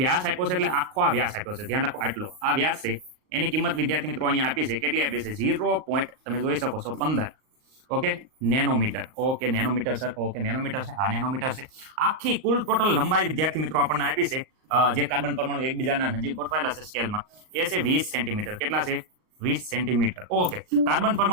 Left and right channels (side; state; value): left; late; 38 ms